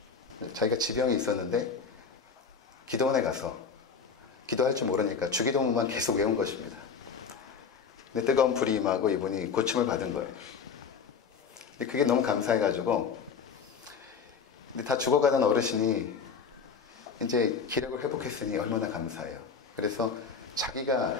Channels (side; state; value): right; quieter; 5.9 dB